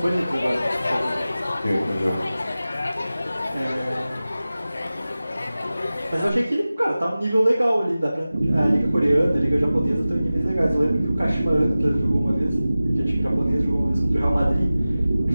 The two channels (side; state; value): both; inverted; correlation -0.96